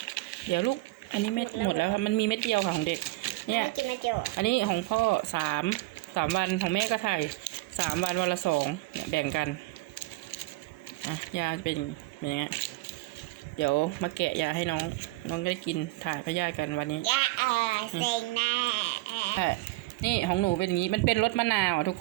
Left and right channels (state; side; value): quieter; left; 20.0 dB